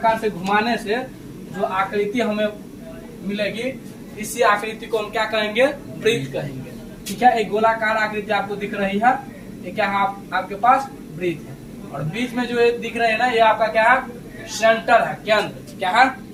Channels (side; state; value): both; identical; correlation 1.00